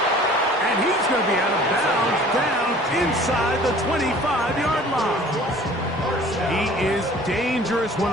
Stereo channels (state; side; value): normal; both; correlation 0.49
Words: And he's going to be out of bounds down inside the 25-yard line. He is dangerous